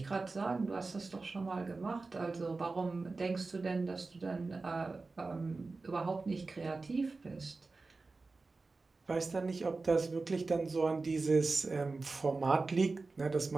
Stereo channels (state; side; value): quieter; left; 3.8 dB